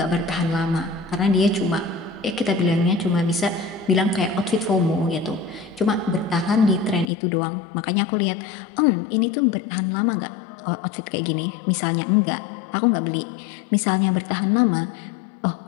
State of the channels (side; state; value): right; drops out; at 7.1 s